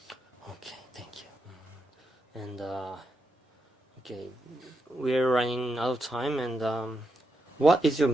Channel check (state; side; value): normal; both; correlation 0.84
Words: Okay, thank you. And okay, we're running out of time, and what is your